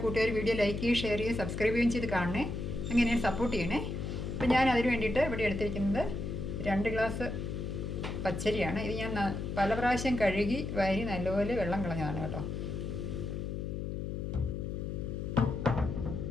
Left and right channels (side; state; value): left; noise; hum, 4 dB below the sound